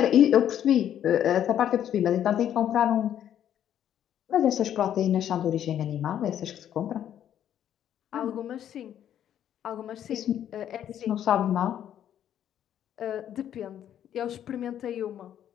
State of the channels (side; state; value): right; quieter; 10.3 dB